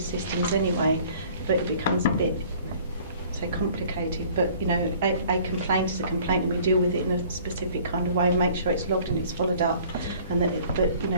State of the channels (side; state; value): both; inverted; correlation -0.53